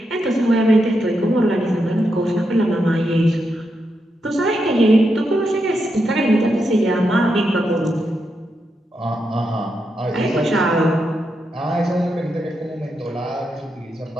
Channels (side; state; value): both; normal; correlation 0.84